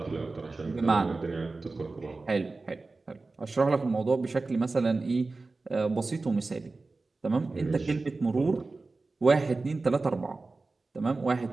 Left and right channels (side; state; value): left; quieter; 3.6 dB